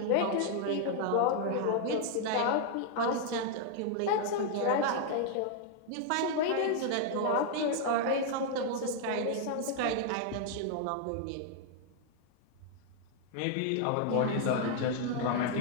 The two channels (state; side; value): different; both; correlation 0.00